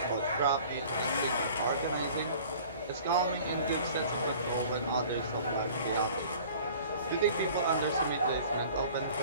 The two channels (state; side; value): inverted; both; correlation -0.47